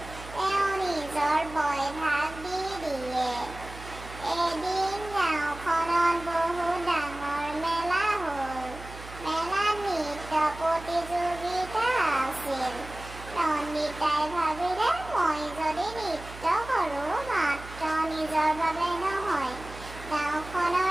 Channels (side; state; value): right; noise; hum, 14 dB below the sound